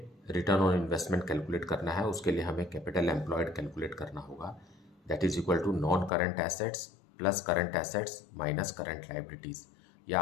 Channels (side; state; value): right; drops out; at 6.1 s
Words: return on investment calculate करना है, उसके लिए हमें capital employed calculate करना होगा, that is equal to non current assets plus current assets minus current liabilities, या